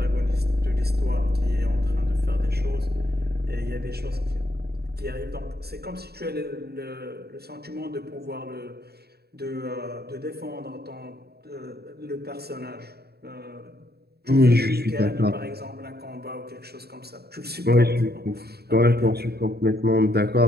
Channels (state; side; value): late; left; 0.47 ms